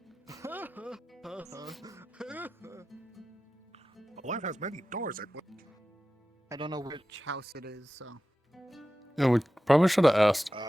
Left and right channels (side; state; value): both; normal; correlation 0.94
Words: Life has many doors. I don't know which house it is, so. Yeah, we probably should have asked.